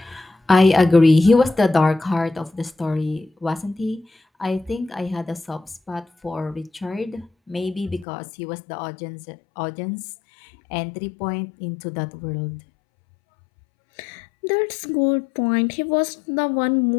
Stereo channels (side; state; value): right; drops out; at 8.1 s